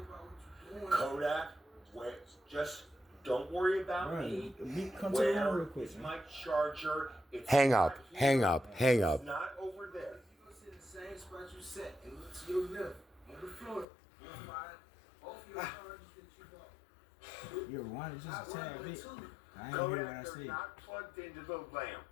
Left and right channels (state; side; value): drops out; right; at 13.9 s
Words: Kodak, wait. Just don't worry about Right. me. Come to the room real Where quick, is man. my charger? It's Hang not up. here. Hang up. Hang up. It's not over there. You go sit in the same spot you sat and look to your left on the floor. You'll find both of your charges that you bought. You're one, just a tad bit. I ain't hear what Kodak, I they're said. not plugged into the lamp.